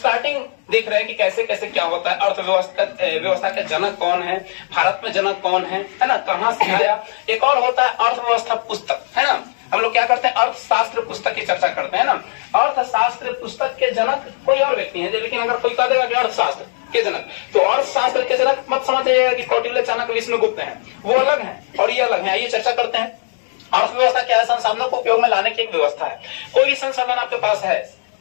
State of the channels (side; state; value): right; silent; digital silence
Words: देख रहे हैं कि कैसे कैसे क्या होता है। अर्थव्यवस्था के जनक कौन है, भारत में जनक कौन है ना, कहां से आया। एक और होता है अर्थव्यवस्था पुस्तक, है ना। हम लोग क्या करते हैं, अर्थशास्त्र पुस्तक की चर्चा करते हैं ना। अर्थशास्त्र पुस्तक के जनक कोई और व्यक्ति है, लेकिन अगर कोई कह देगा कि अर्थशास्त्र के जनक, तो अर्थशास्त्र के जनक मत समझ जाइएगा कि कौटिल्य, चाणक्य, विष्णुगुप्त हैं, वो अलग हैं और ये अलग है। आइए चर्चा करते हैं। अर्थव्यवस्था क्या है? संसाधनों को उपयोग में लाने की एक व्यवस्था है। कोई भी संसाधन आपके पास है,